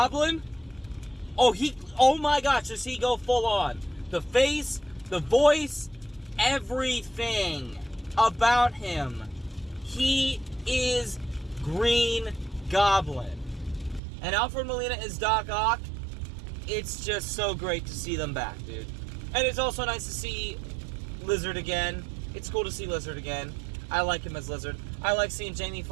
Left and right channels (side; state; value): left; drops out; at 14.0 s